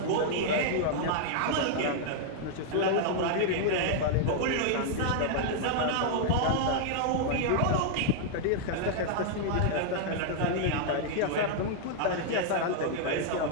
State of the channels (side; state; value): both; different; correlation -0.01